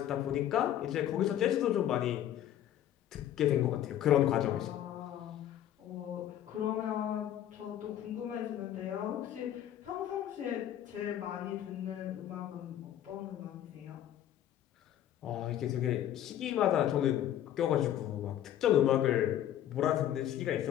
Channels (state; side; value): quieter; right; 11.4 dB